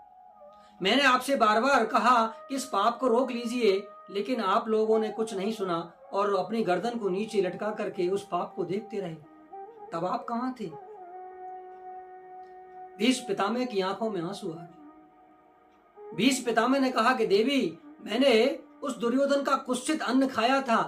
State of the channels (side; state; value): both; identical; correlation 1.00